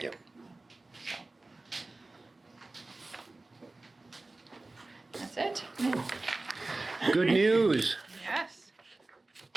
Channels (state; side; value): quieter; left; 3.1 dB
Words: Yep. That's it. good news. Yes.